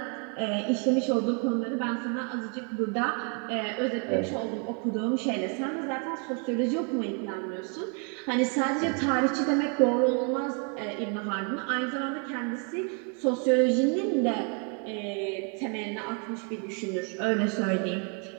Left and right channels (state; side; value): quieter; left; 38.5 dB